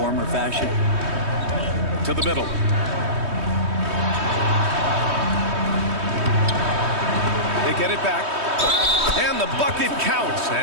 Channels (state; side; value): late; left; 3.2 ms